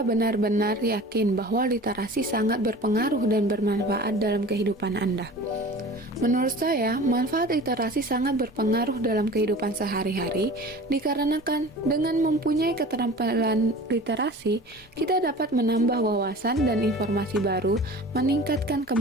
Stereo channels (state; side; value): normal; both; correlation 0.40